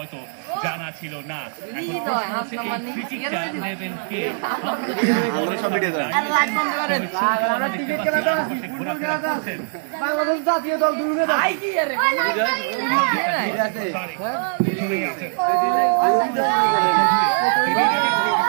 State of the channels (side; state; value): left; silent; digital silence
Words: জানা ছিল না। এখন প্রশ্ন হচ্ছে এই ফ্রি কিকটা নেবেন কে? বাংলাদেশ জাতীয় দল